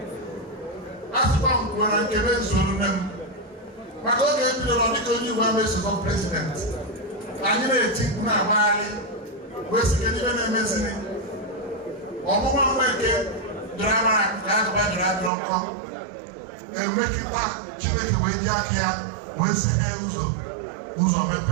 asịkwa m kwuo na nkebe zuru nne m maka oge ebidoro dịka onye Igbo ama-esokọ prezident anyị na-eti mkpu na-agbagharị wee sị kedu ibe na-emeziri ọmụma Nweke dọrọ amara ka agụba dọrọ adọrọ nkọ na-emekịta Chineke wee ji aka ya wee seghe ụzọ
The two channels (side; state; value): left; drops out; at 15.3 s